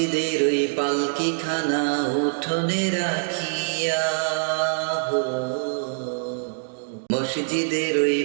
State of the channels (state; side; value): silent; left; digital silence